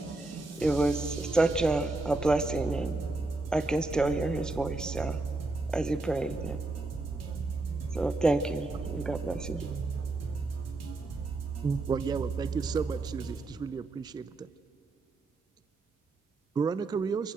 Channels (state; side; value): quieter; left; 3.1 dB